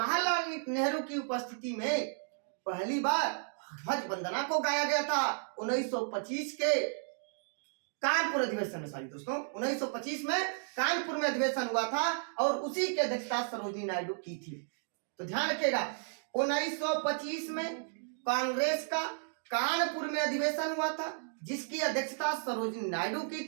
नेहरू की उपस्थिति में पहली बार ध्वज वंदना को गाया गया था 1925 के कानपुर अधिवेशन में। सॉरी दोस्तों, 1925 में कानपुर में अधिवेशन हुआ था, और उसी की अध्यक्षता सरोजिनी नायडू की थी। तो ध्यान रखिएगा, 1925 में कांग्रेस का कानपुर में अधिवेशन हुआ था, जिसकी अध्यक्षता सरोजिनी नायडू की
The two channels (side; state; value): left; silent; digital silence